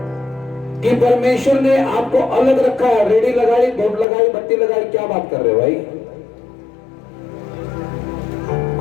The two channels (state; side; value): drops out; right; at 4.0 s